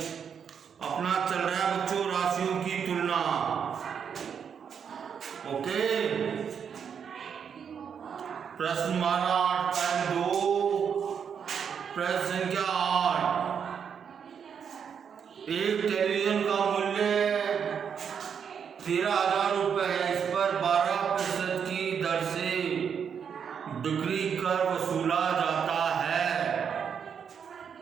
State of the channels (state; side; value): quieter; left; 7.3 dB